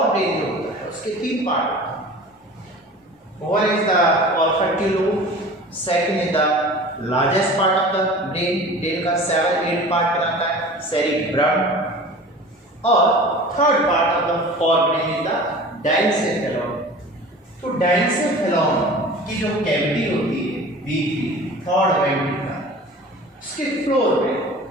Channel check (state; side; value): normal; both; correlation 0.40